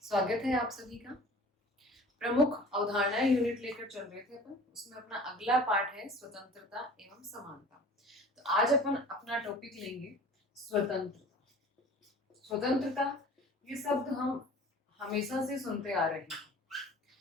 स्वागत है आप सभी का। प्रमुख अवधारणाएं यूनिट लेकर चल रहे थे अपन, उसमें अपना अगला पार्ट है स्वतंत्रता एवं समानता। तो आज अपन अपना टॉपिक लेंगे स्वतंत्रता। स्वतंत्रता ये शब्द हम हमेशा से सुनते आ रहे हैं।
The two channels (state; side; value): normal; both; correlation 0.44